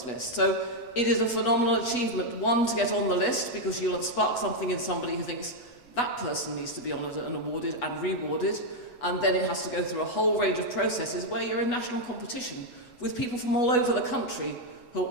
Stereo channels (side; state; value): right; late; 8.1 ms